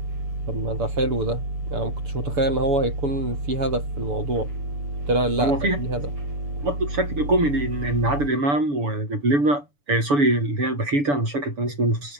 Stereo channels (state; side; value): late; left; 6.9 ms